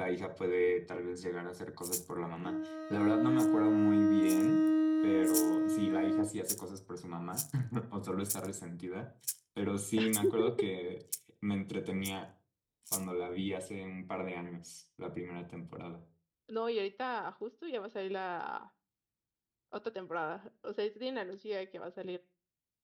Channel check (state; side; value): identical; both; correlation 1.00